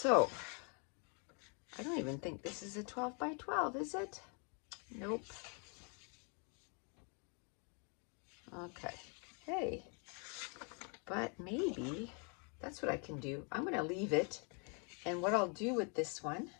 I don't even think this is a 12 by 12, is it? Nope. Okay. Hey, but maybe that's what I can do. I'm going to leave it, and what I'll do with this one,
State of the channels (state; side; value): quieter; right; 37.2 dB